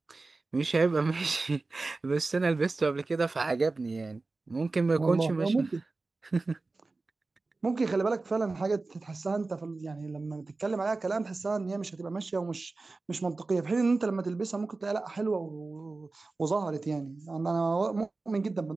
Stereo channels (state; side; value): quieter; left; 3.6 dB